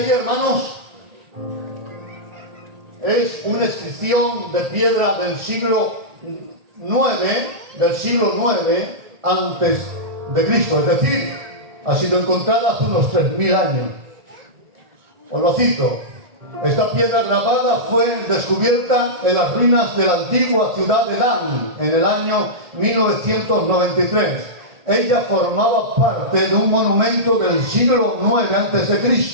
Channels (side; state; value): left; late; 1.8 ms